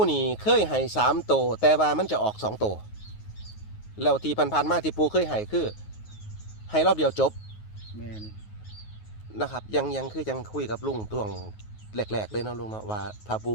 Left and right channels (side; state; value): right; late; 9.4 ms